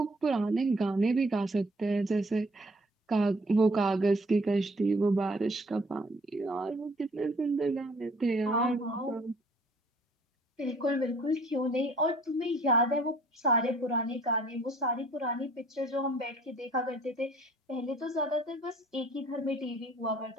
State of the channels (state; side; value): normal; both; correlation 0.57